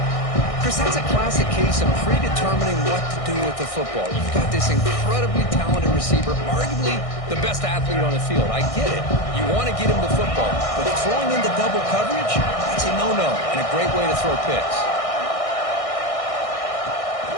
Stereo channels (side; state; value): right; late; 1.6 ms